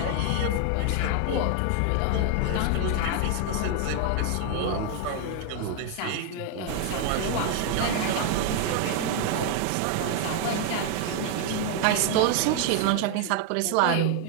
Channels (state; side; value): different; both; correlation 0.00